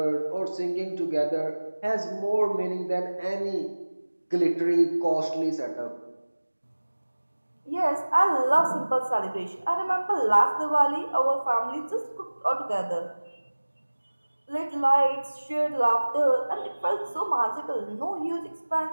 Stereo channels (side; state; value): both; inverted; correlation -1.00